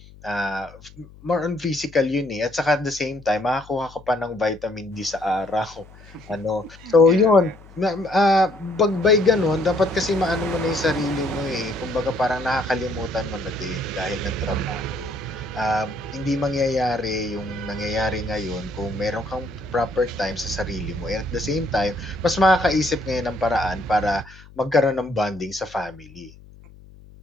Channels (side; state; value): left; noise; hum, 22 dB below the sound